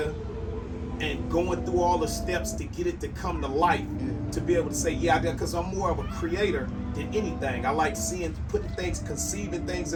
and going through all the steps to get it to come to life, to be able to say, because I'm more of a creator than anything. I like conceiving things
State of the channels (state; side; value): identical; both; correlation 1.00